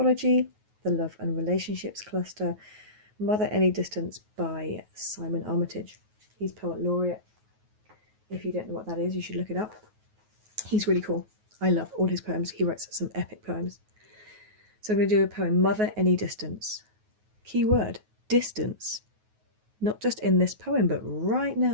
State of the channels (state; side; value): late; left; 9.4 ms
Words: the Love and Relationships cluster, Mother Any Distance by Simon Armitage. He's Poet Laureate. If you don't know what that is, you should look it up. He's really cool. I love all his poems. He writes some epic poems. So I'm going to do a poem, Mother Any Distance. Key word, distance. Not just in this poem, but right